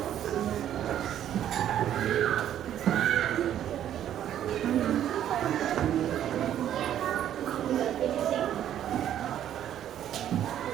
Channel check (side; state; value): left; quieter; 10.9 dB